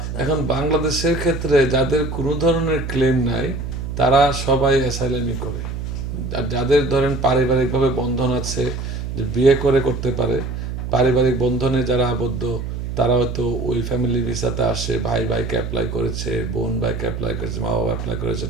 তারা এখন বেশি? বাংলাদেশের ক্ষেত্রে যাদের কোনো ধরনের ক্লেম নাই তারা সবাই অ্যাসাইলামই করে। আর যাদের ধরেন পারিবারিকভাবে বন্ধন আছে, যে বিয়ে করে করতে পারে, পারিবারিক বন্ধনে যারা আবদ্ধ, তারা হয়তো ওই ফ্যামিলি ভিসাতে আসে, ভাই ভাইকে অ্যাপ্লাই করেছে, বোন ভাইকে অ্যাপ্লাই করেছে, মা বাবা অ্যাপ্লাই করেছে,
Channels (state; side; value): noise; right; hum, 5 dB below the sound